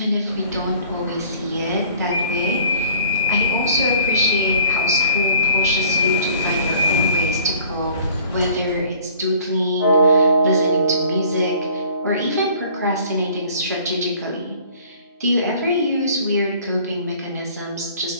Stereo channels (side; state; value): both; inverted; correlation -0.53